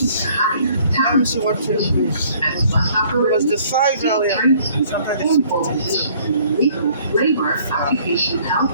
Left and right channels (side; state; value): both; inverted; correlation -0.59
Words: to hire Let me see what took place. as bus It operators, was the 5 earlier. Sometimes and full positions in legal, labor, occupational health,